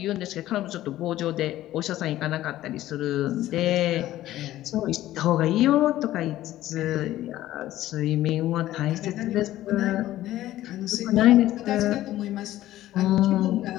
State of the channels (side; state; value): right; quieter; 14.4 dB